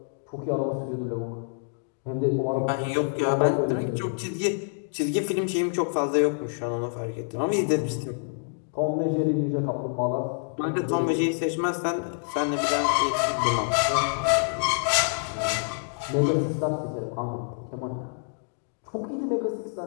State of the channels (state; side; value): silent; right; digital silence